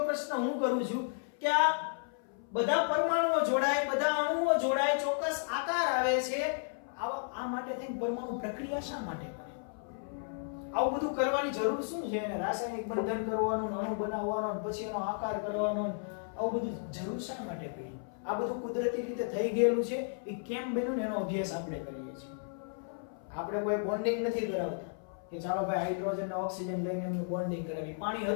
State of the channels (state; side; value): silent; right; 55 dB below the other